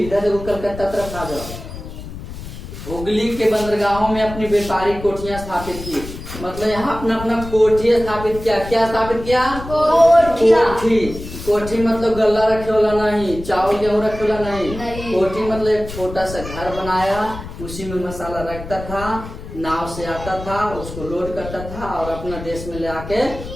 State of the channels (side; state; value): left; noise; rumble, 11 dB below the sound